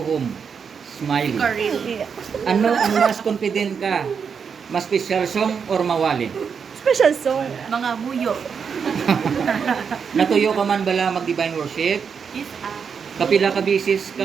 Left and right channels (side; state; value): left; quieter; 6.4 dB